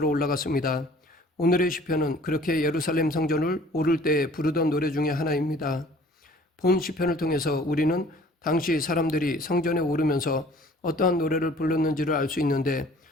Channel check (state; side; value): normal; both; correlation 0.52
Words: 올라갔습니다. 오늘의 시편은 그렇게 예루살렘 성전을 오를 때에 부르던 노래 중에 하나입니다. 본 시편을 통해서 우리는 당시 사람들이 성전에 오르면서 어떠한 노래를 불렀는지를 알 수 있는데,